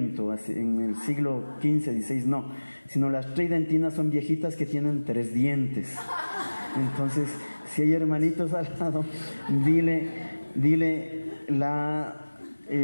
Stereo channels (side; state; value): both; inverted; correlation -1.00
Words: en el siglo XV, XVI, no, sino las tridentinas son viejitas que tienen 3 dientes. Entonces, si hay hermanitos al lado, dile la